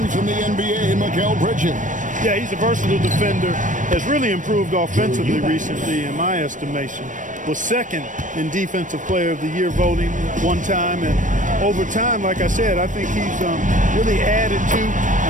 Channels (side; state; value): left; late; 0.37 ms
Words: in the NBA, Mikal Bridges. Yeah, he's a versatile defender. Has really improved offensively recently, in my estimation. Was second in Defensive Player of the Year voting one time. And over time, like I said, I think he's really added to